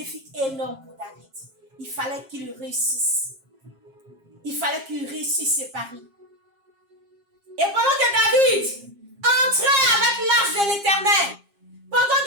énorme pour David. Il fallait qu'il réussisse. Il fallait qu'il réussisse ses paris. Et pendant que David entrait avec l'arche de l'Éternel, pendant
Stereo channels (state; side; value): late; left; 7.4 ms